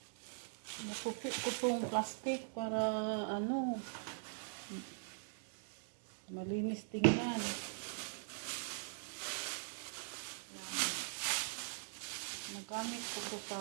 Nakupit ko itong plastic para malinis tingnan. Nagamit ko ito sa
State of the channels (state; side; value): silent; left; digital silence